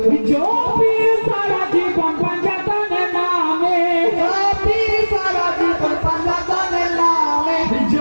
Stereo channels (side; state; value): both; inverted; correlation -1.00